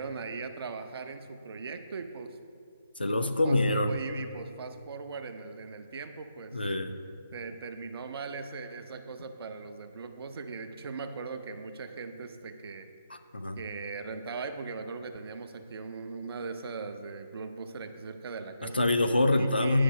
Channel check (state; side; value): inverted; both; correlation -0.81